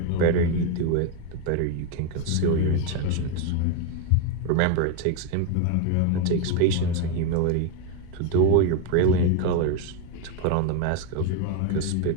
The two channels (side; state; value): both; different; correlation 0.02